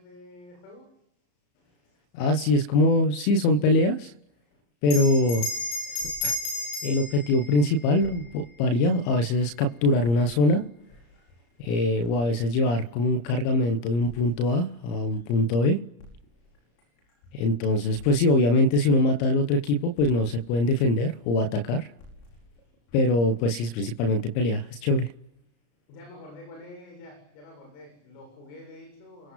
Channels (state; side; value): late; right; 34 ms